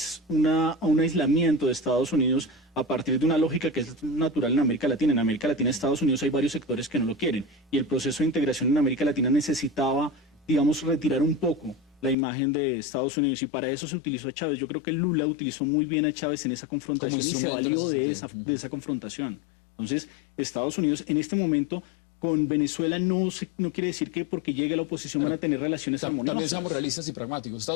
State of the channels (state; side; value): drops out; right; at 12.2 s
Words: aislamiento de Estados Unidos a partir de una lógica que es natural en América Latina. En América Latina, Estados Unidos, hay varios sectores que no lo quieren, y el proceso de integración en América Latina necesitaba, digamos, retirar un poco la imagen de Estados Unidos, y para eso se utilizó a Chávez. Yo creo que Lula utilizó muy bien a Chávez en esa confrontación y se valió de esa confrontación. Entonces, Estados Unidos en este momento con Venezuela no quiere decir que porque llegue la oposición van a tener relaciones armoniosas. También somos realistas y pragmáticos.